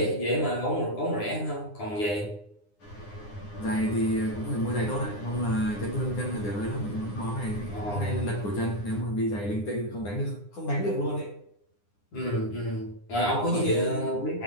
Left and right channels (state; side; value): late; right; 9.8 ms